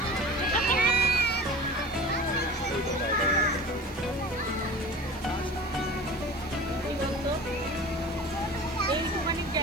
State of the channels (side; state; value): right; noise; hiss, 24 dB below the sound